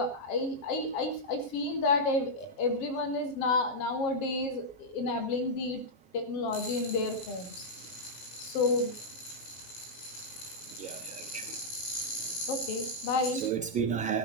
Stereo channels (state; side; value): late; right; 7.4 ms